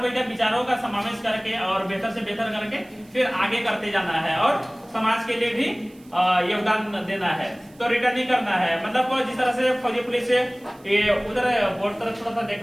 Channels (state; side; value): noise; right; hiss, 29 dB below the sound